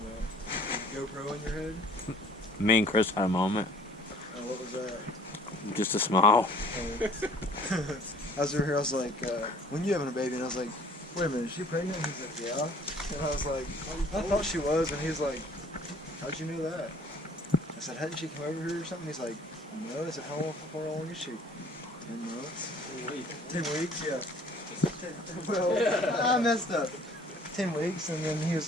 about? GoPro in your head? Me and Chris had a moment. What was that? Just a smile. I was over here, I was like, when you having a baby? And I was like, wait a minute, is she pregnant? And he's like, yeah. And I was like, I thought she was. And he's like, how'd you know that? I said, hadn't she come over here or something? He's like, no. I said, how long is she? 10 months. 10 weeks, yeah. Well, I messed up. 10 weeks, and then he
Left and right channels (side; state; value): both; normal; correlation 0.54